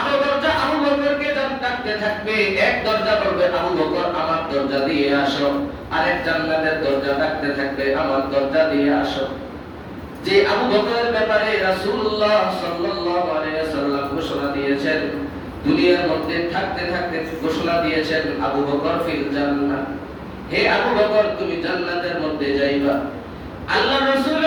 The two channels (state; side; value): identical; both; correlation 1.00